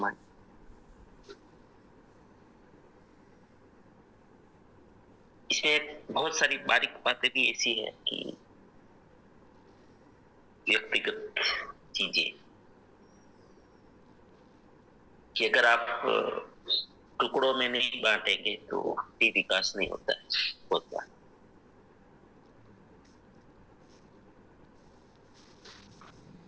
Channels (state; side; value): identical; both; correlation 1.00